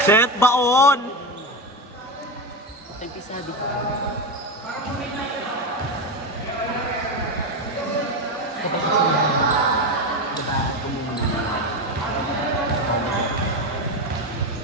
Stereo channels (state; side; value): normal; both; correlation 0.16